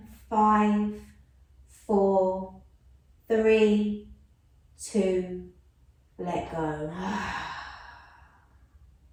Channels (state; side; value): identical; both; correlation 1.00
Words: 5, 4, 3, 2, let go.